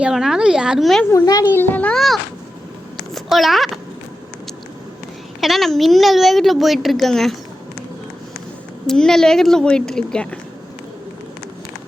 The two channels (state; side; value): normal; both; correlation 0.91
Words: எவனாலும் யாருமே முன்னாடி இல்லைன்னா போகலாம். ஏன்னா நான் மின்னல் வேகத்தில் போயிட்டுருக்கேங்க. போயிட்டுருக்கேன்.